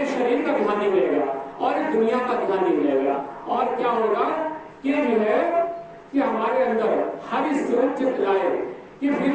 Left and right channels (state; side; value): identical; both; correlation 1.00